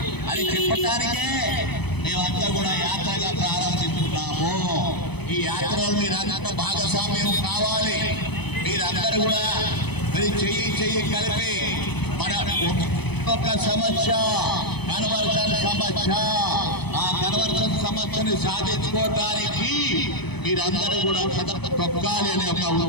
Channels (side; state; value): right; late; 0.98 ms